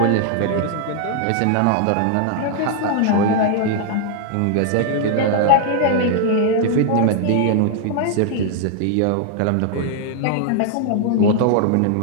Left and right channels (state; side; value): different; both; correlation 0.00